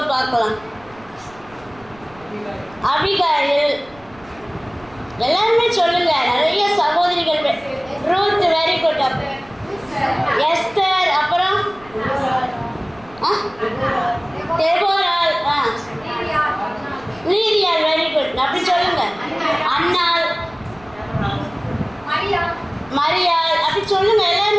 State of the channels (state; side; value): noise; right; rumble, 25 dB below the sound